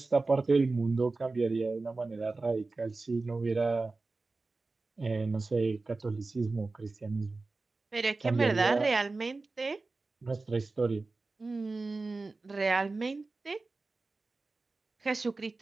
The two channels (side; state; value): left; quieter; 3.6 dB